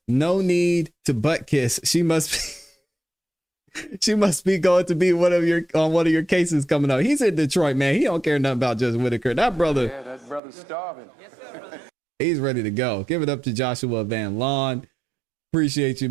no need to butt kiss. She must be going to be on one of your cases coming up. He's in Detroit, man. He don't care nothing about Judge Whitaker. That brother. Yeah, that brother's starving. He's ready to go. Give it up to Joshua Van Lawn. Appreciate you,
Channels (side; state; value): left; drops out; at 10.4 s